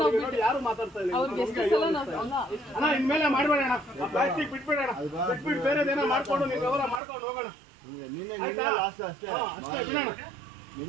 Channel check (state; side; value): drops out; left; at 7.0 s